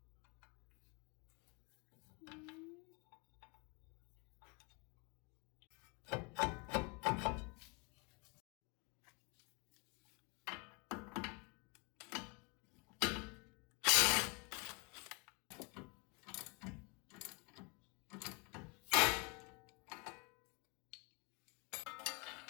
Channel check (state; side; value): quieter; right; 30.3 dB